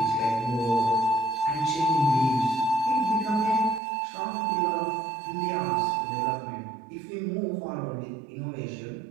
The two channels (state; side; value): drops out; left; at 3.8 s